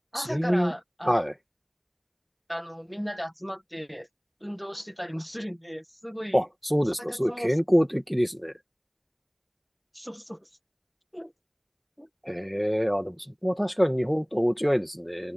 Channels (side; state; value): both; identical; correlation 1.00